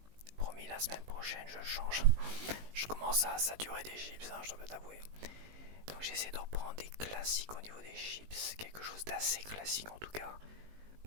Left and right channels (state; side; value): late; left; 19 ms